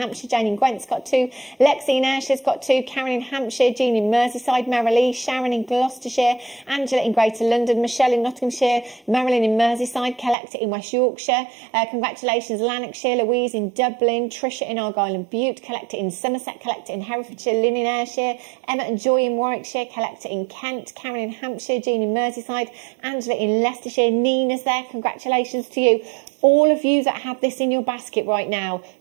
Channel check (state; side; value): drops out; left; at 10.4 s